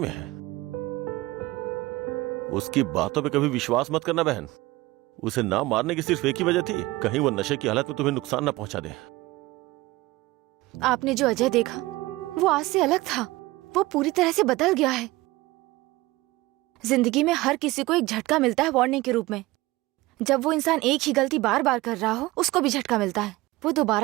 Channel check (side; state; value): left; quieter; 19.8 dB